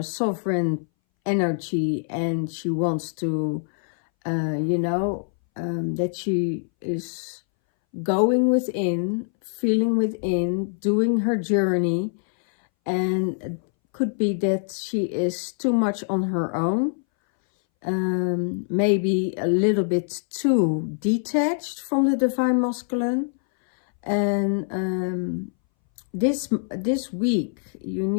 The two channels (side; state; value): right; silent; 61 dB below the other